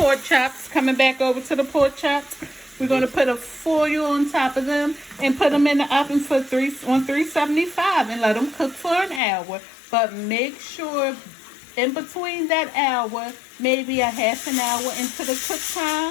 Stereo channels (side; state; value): right; drops out; at 9.2 s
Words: chops. Coming back over to the pork chops, we're going to put a foil on top of them and put them in the oven for 375 and let them cook for an hour. But make sure in between that hour, maybe a half an hour into the cook